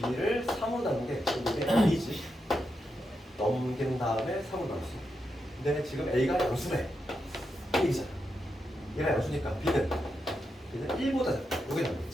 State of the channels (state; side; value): normal; both; correlation 0.85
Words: 3으로 나눈 게 이게 A지. 넘긴 다음에 3으로 나눴어. 근데 지금 A가 양수래. A잖아. 얘가 양수니까 B는 1보다 작다. 이게